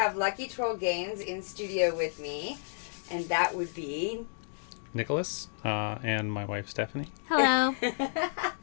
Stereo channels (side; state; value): right; silent; digital silence